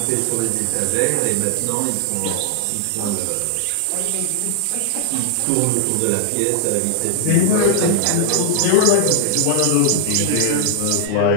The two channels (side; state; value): both; different; correlation 0.00